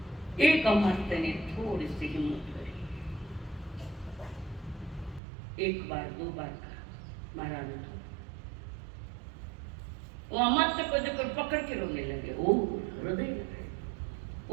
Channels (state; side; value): drops out; left; at 5.2 s